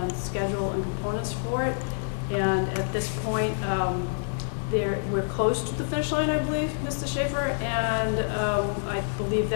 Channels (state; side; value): silent; right; 60 dB below the other